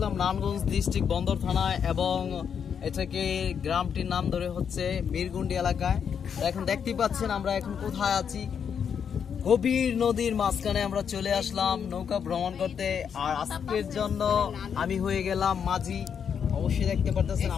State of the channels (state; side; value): quieter; right; 7.4 dB